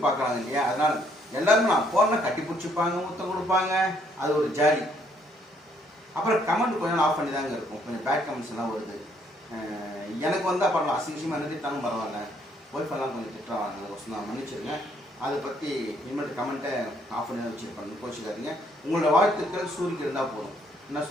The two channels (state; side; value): normal; both; correlation 0.68